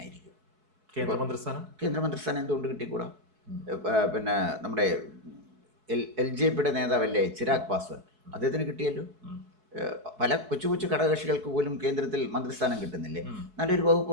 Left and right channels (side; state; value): left; late; 4.7 ms